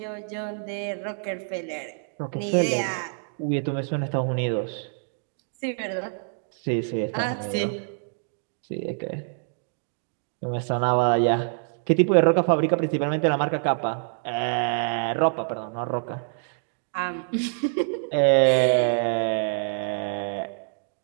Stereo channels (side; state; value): left; silent; 61 dB below the other